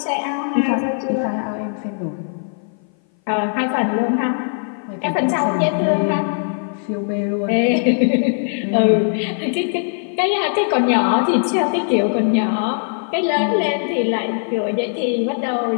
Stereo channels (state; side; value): silent; right; 58 dB below the other